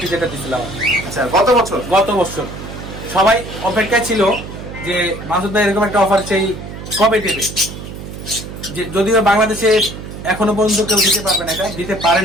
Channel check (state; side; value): noise; right; hum, 11 dB below the sound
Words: যেটা দিয়েছিলাম। আচ্ছা, গত বছর সবাই অপেক্ষায় ছিল যে মাসুদ ভাই এরকম একটা অফার সেই কবে দেবে। যদিও বাংলাদেশে এখনো পর্যন্ত কেউ দিতে পারবে না, এটা দিতে পারে